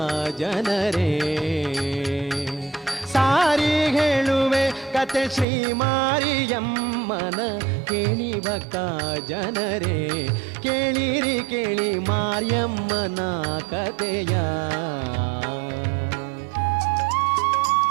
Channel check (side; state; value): left; drops out; at 5.5 s